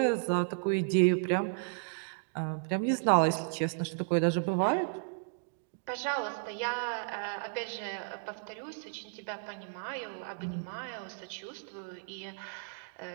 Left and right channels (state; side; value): silent; left; digital silence